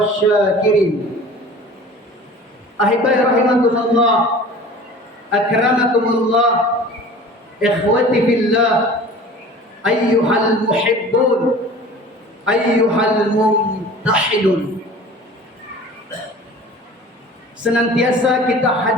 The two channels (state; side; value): normal; both; correlation 0.42